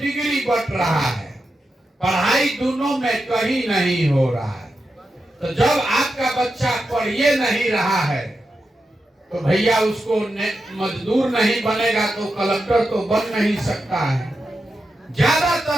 बट रहा है। पढ़ाई दोनों में कहीं नहीं हो रहा है। तो जब आपका बच्चा पढ़िए नहीं रहा है तो भैया उसको मजदूर नहीं बनेगा तो कलेक्टर तो बन नहीं सकता है।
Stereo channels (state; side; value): normal; both; correlation 0.88